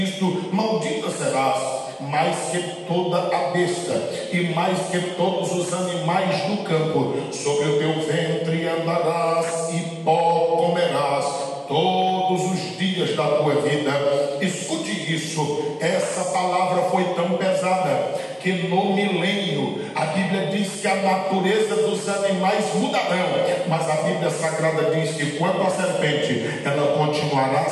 isto, maldita serás, mais que toda a besta e mais que todos os animais do campo. Sobre o teu ventre andarás e pó comerás todos os dias da tua vida. Escute isso, essa palavra foi tão pesada que no milênio a Bíblia diz que a natureza dos animais mudarão, mas a Bíblia Sagrada diz que quanto à serpente, ela continuará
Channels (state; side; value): identical; both; correlation 1.00